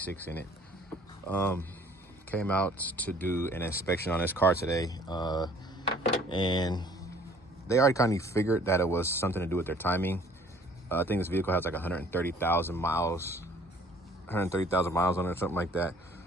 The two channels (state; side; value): normal; both; correlation 0.55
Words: in it. Came out to do an inspection on this car today. And they already kind of figured that it was something to do with their timing. I think this vehicle has like 130,000 miles. 130,000 miles on it or something like that.